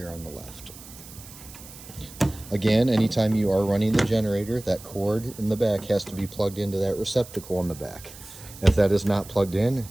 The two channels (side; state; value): right; noise; hiss, 17 dB below the sound